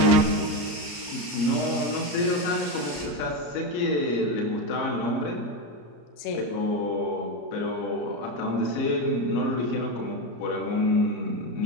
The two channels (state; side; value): late; right; 34 ms